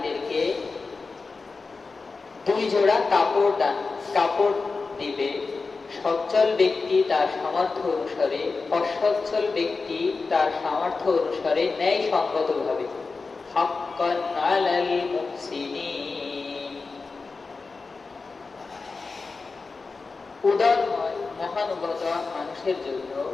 2 জোড়া কাপড় দিবে। সচ্ছল ব্যক্তি তার সামর্থ্য অনুসারে, অসচ্ছল ব্যক্তি তার সামর্থ্য অনুসারে ন্যায়সঙ্গতভাবে। হাক্কান আলাল মুহসিনিন। উদার মহানুভবতা মানুষের জন্য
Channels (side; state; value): right; quieter; 4.2 dB